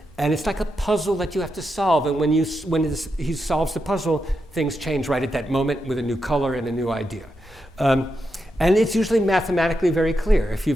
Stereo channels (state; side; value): normal; both; correlation 0.86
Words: and it's like a puzzle that you have to solve, and when he solves the puzzle, things change right at that moment with a new color and a new idea. And it's usually mathematically very clear. If